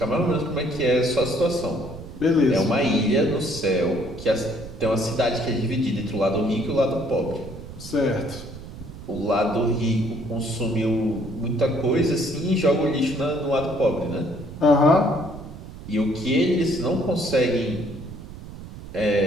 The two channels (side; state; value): right; noise; rumble, 13 dB below the sound